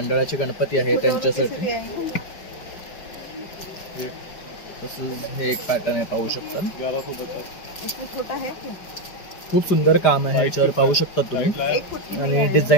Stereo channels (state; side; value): late; right; 5.2 ms